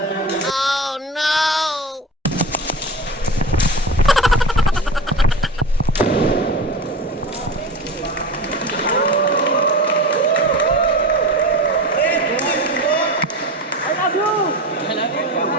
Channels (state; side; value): normal; both; correlation 0.30